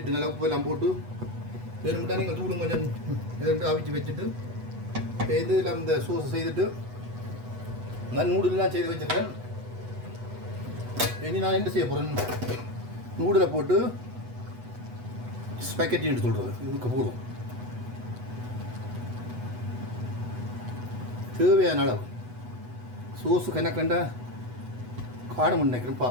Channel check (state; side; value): late; left; 8.1 ms